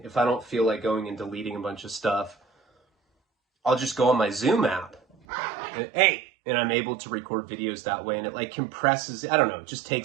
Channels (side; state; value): left; drops out; at 5.2 s